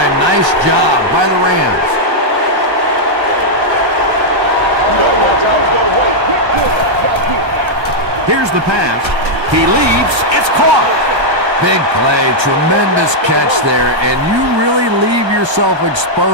Nice job by the Rams. Here's the pass. He leaps. It's caught. Big play, tremendous catch there, and you really leave yourself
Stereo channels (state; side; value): late; left; 1.4 ms